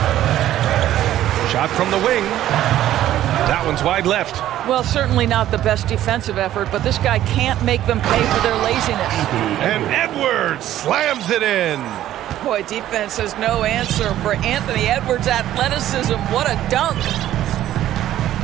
Shot from the wing. That one's wide left. Well, certainly not the best defensive effort, but this guy can't make them pay for their laziness. And Edwards slams it in. Boy, defense has no answer for Anthony Edwards' athleticism. What a dunk.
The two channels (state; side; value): quieter; left; 12.8 dB